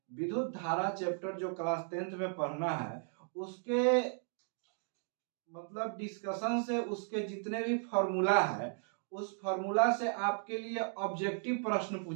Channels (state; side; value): silent; left; 54 dB below the other